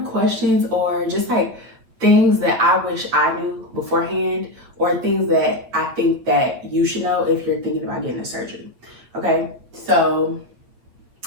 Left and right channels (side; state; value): left; late; 8.8 ms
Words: or just like things that I wish I knew beforehand, or things that I think that you should know if you're thinking about getting a surgery. Okay, so